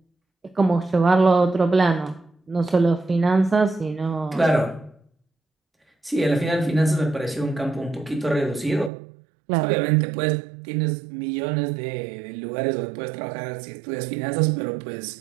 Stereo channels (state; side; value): drops out; left; at 8.9 s